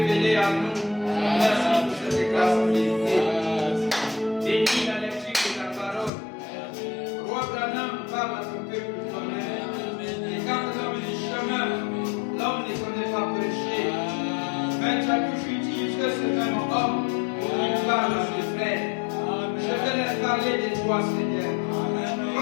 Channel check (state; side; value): drops out; right; at 6.1 s